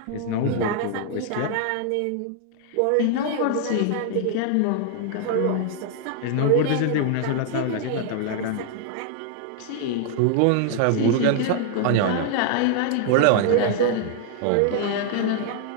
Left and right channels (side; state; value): both; different; correlation 0.00